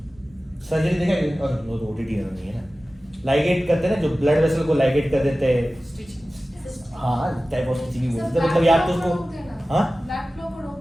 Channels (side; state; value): both; normal; correlation 0.96